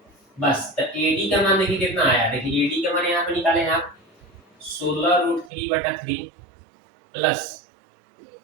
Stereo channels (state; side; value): drops out; left; at 5.5 s